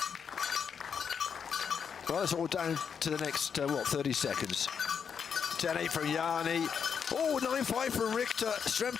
Well, it's all down to the next, 30 seconds. 10-8 from Jani. Oh, 9-5 from Richter.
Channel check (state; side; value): quieter; right; 6.9 dB